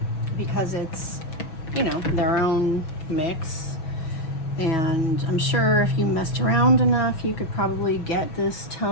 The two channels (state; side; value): late; right; 6.2 ms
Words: because it's, you know, their own mix. And I'm sure if you messed around enough, you could probably get this